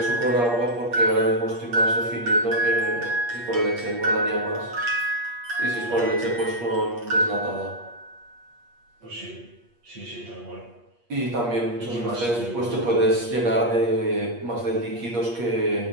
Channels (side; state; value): left; late; 8.5 ms